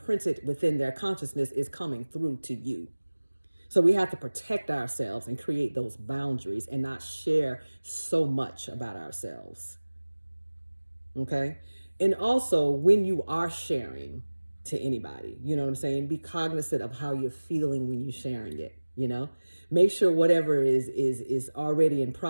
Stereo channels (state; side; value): inverted; both; correlation -1.00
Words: within their consciousness is coming through to you. So we have to protect ourselves and create those boundaries and not share so much about ourselves. Okay? And also, when you are sharing to anybody, you know what I'm saying? Be cognizant of how you're feeling when you're sharing it, you know? Make sure whatever is already in